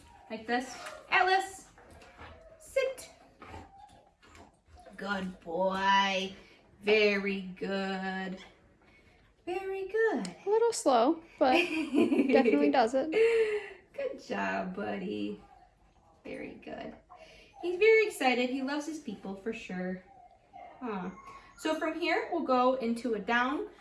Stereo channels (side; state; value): both; identical; correlation 1.00